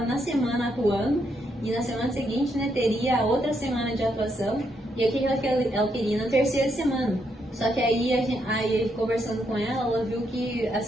na semana atuando, e na semana seguinte, né, teria a outra semana de atuação, e aqui ela queria na 3ª semana. Só que aí conversando com ela viu que,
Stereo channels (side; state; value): both; normal; correlation 0.77